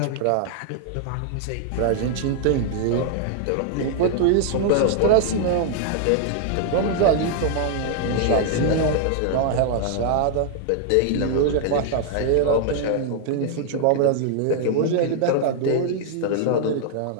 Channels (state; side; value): different; both; correlation 0.00